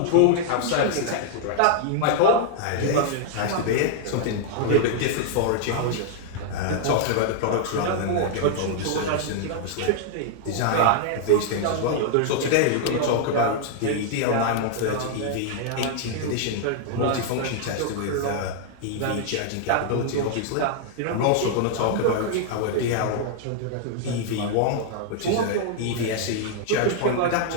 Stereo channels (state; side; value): different; both; correlation -0.01